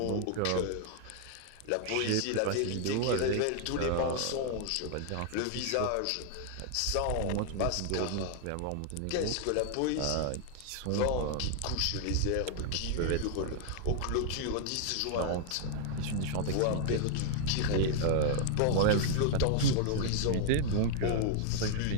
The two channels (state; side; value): different; both; correlation 0.00